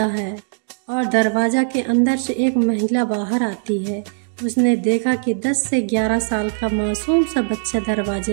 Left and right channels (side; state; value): left; silent; digital silence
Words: है और दरवाजा के अंदर से एक महिला बाहर आती है। उसने देखा कि 10 से 11 साल का मासूम सा बच्चा